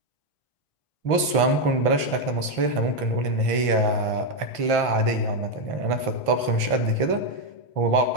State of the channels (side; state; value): right; late; 1.5 ms